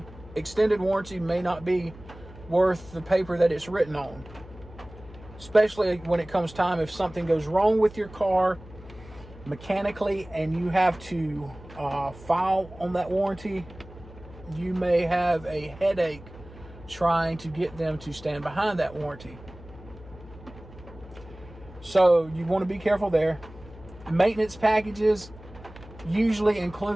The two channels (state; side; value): noise; left; hum, 18 dB below the sound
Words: extended warranty, may not be worth the paper that it's written on. Especially when it comes time, if something goes wrong with your car mechanically and you have to file on that warranty, you may have a headache trying to get them to stand behind that warranty. So you want to be careful there. Maintenance packages usually